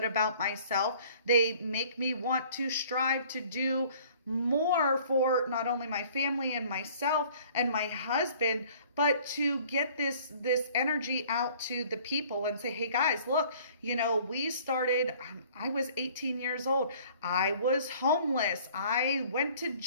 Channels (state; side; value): inverted; both; correlation -0.53